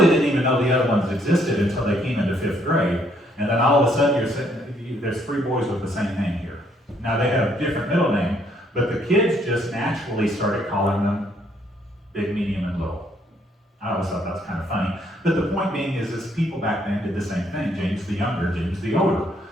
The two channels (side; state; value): both; normal; correlation 0.69